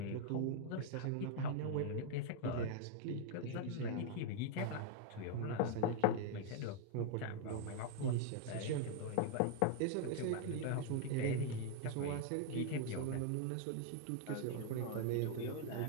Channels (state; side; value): different; both; correlation 0.00